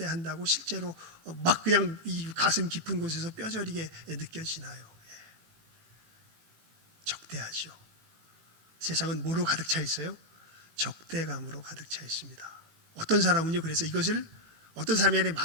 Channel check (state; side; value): late; left; 18 ms